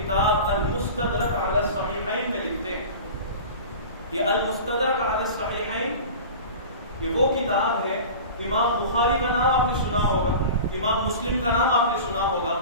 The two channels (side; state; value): both; inverted; correlation -0.36